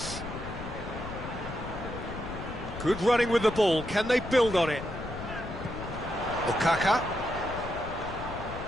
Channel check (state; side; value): noise; left; rumble, 10 dB below the sound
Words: Good running with the ball. Can they build on it? Okaka.